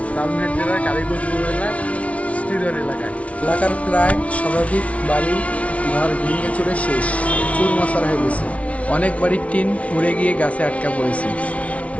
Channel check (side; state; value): right; late; 0.065 ms